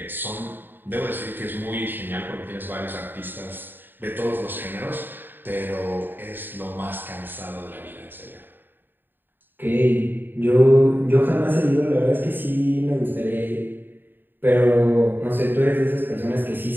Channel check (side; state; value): left; late; 0.094 ms